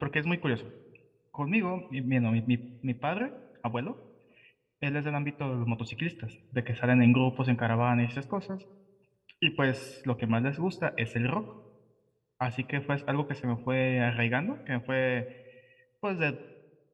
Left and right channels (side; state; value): both; identical; correlation 1.00